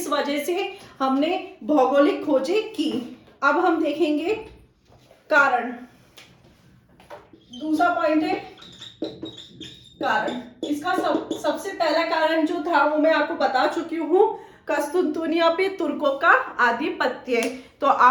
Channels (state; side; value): identical; both; correlation 1.00